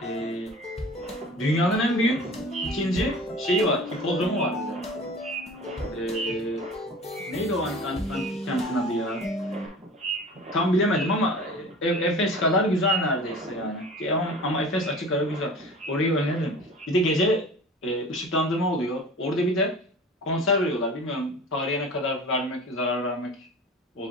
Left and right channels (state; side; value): normal; both; correlation 0.40